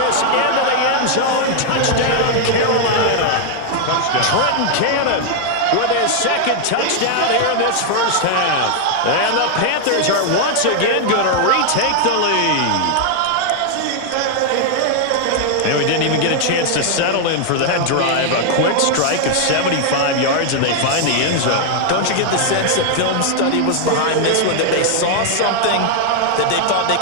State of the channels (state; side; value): different; both; correlation 0.00